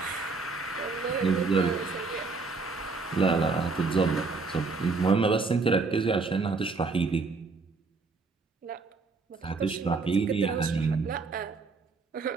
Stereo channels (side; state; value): left; quieter; 4.1 dB